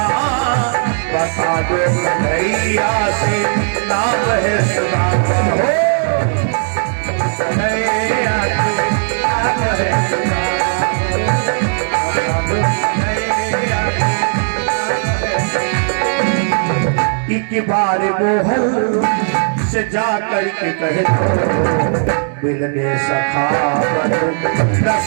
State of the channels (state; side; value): silent; left; digital silence